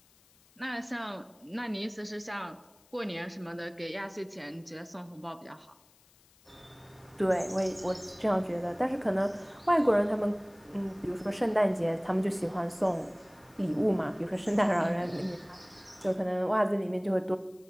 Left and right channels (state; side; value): noise; left; hiss, 30 dB below the sound